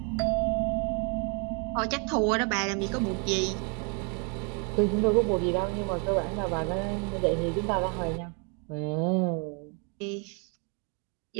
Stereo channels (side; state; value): left; quieter; 36.4 dB